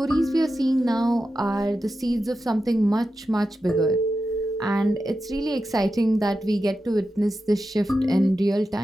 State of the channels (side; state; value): both; normal; correlation 0.91